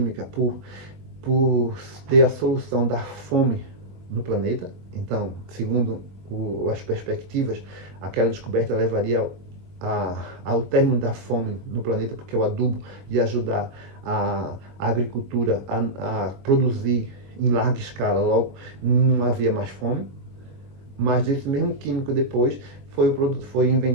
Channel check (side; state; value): left; late; 22 ms